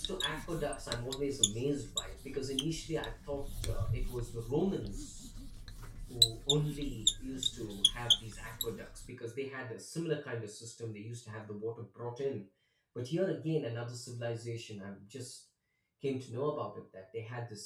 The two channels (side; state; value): both; identical; correlation 1.00